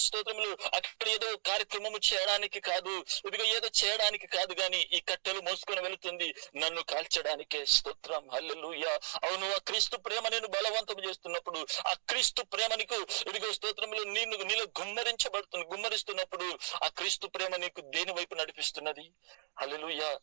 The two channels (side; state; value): left; silent; digital silence